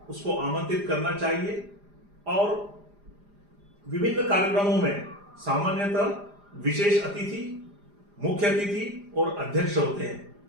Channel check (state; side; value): late; left; 4.9 ms